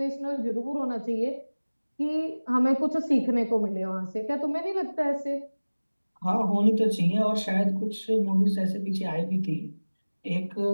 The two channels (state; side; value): inverted; both; correlation -1.00